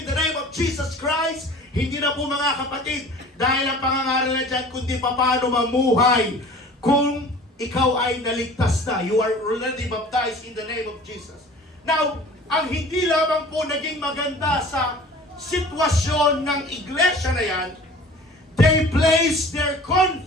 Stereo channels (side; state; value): both; normal; correlation 0.45